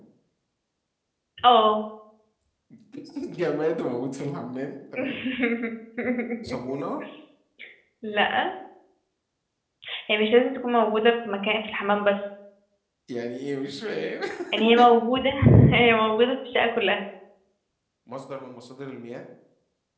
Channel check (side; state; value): both; identical; correlation 1.00